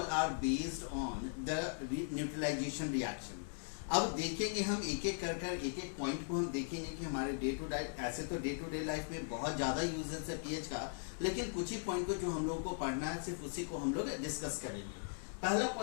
are based on the neutralisation reaction. अब देखेंगे हम एक एक एक पॉइंट को हम देखेंगे कि हमारे डे टू डे, ऐसे तो डे टू डे लाइफ में बहुत ज़्यादा यूजेस है पीएच का, लेकिन कुछ ही पॉइंट को जो हम लोगों को पढ़ना है सिर्फ उसी को हम लोग डिस्कस करेंगे. पहला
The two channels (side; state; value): right; silent; digital silence